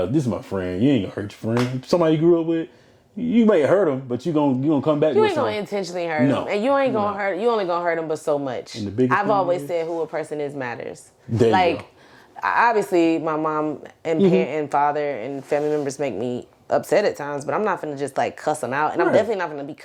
this is my friend. You ain't going to hurt your friend. Somebody you grew up with, you may hurt them, but you're gonna come back. You ain't going to intentionally hurt them. And you ain't going to hurt, you only going to hurt them but so much. I've always said who a person is matters. Like, obviously, my mom and parent and father and family members make me upset at times, but I'm not gonna just like cuss them out, and I'm definitely not gonna be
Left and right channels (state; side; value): identical; both; correlation 1.00